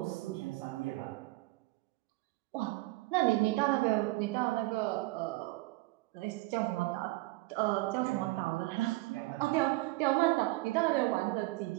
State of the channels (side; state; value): left; quieter; 20.8 dB